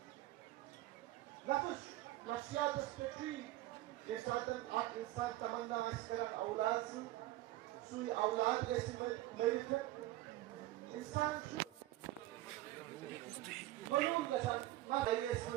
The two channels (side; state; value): left; quieter; 16.5 dB